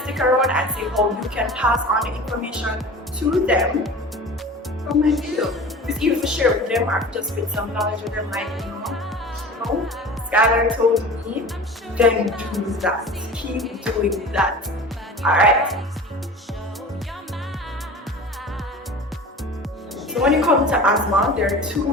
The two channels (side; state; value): both; normal; correlation 0.37